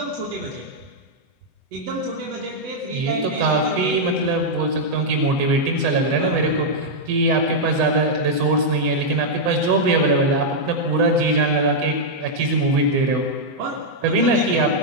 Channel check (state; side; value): late; left; 7.9 ms